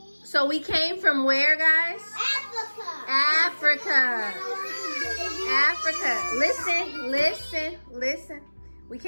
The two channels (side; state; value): both; inverted; correlation -1.00